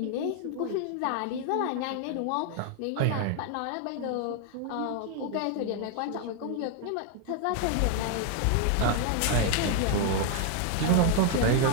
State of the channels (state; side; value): different; both; correlation 0.00